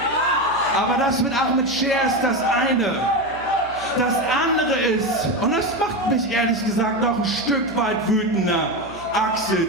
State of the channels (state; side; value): noise; right; hum, 20 dB below the sound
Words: Aber das mit Ahmed Scher ist das eine. Das andere ist, und das macht mich ehrlich gesagt noch ein Stück weit wütender,